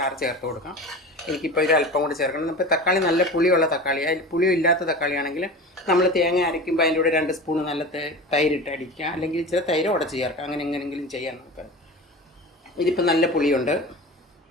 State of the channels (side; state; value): both; normal; correlation 0.33